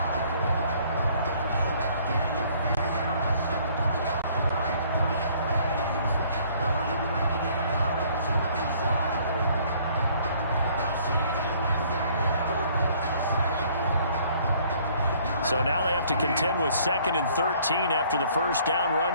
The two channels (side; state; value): both; inverted; correlation -0.59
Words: So now they have to contend with 2nd and 13 after the first down